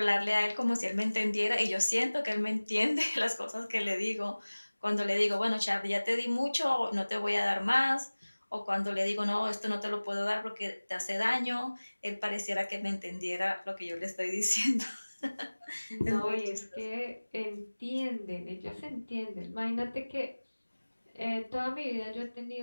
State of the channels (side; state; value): both; inverted; correlation -1.00